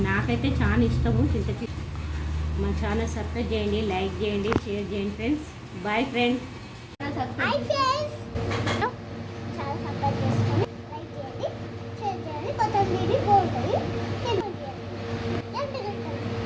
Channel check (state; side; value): identical; both; correlation 1.00